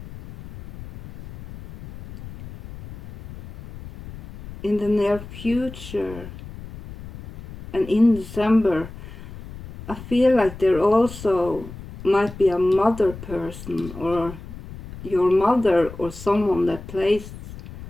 in the near future and in December, I feel like there also might be a mother person, or your mother, or someone that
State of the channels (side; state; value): left; noise; rumble, 14 dB below the sound